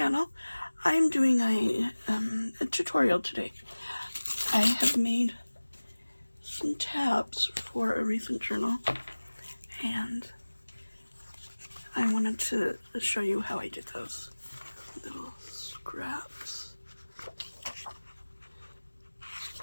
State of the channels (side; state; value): both; inverted; correlation -1.00